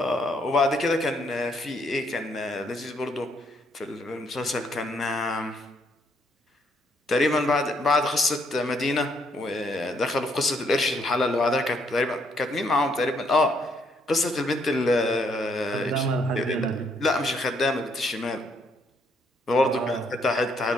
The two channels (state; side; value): normal; both; correlation 0.71